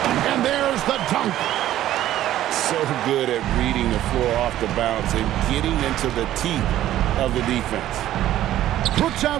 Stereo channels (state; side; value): quieter; left; 13.2 dB